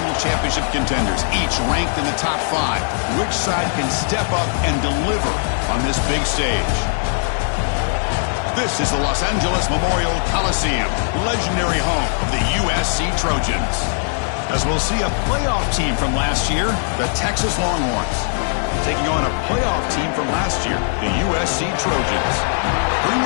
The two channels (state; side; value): silent; right; 56 dB below the other